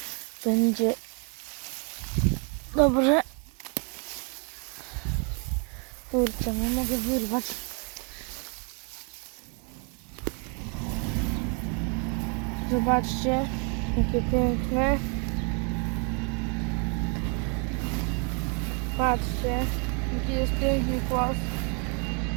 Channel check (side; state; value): left; quieter; 36.6 dB